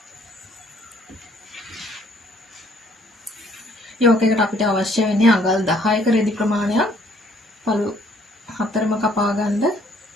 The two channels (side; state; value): both; normal; correlation 0.63